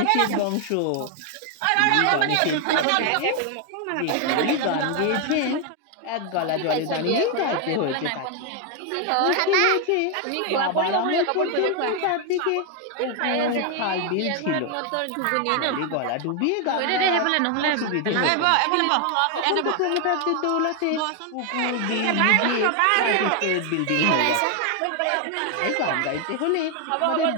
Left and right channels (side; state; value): both; different; correlation 0.01